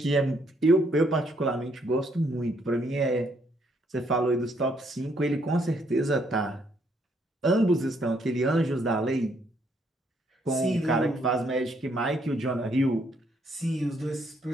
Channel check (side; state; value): both; normal; correlation 0.71